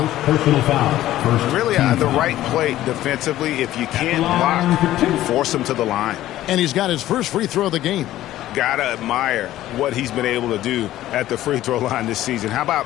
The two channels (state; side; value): quieter; right; 14.2 dB